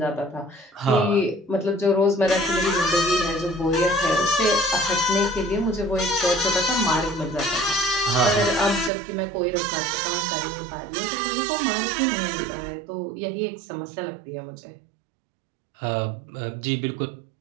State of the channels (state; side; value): drops out; left; at 8.9 s